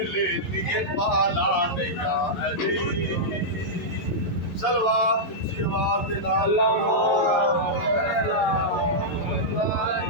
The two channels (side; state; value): right; late; 11 ms